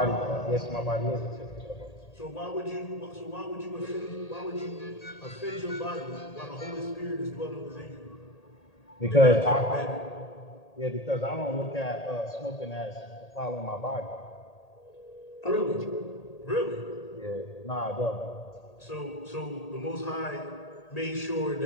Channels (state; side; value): late; right; 1.8 ms